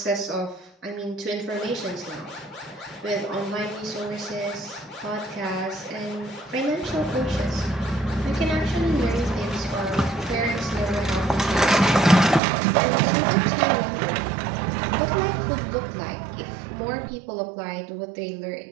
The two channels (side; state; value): left; drops out; at 12.4 s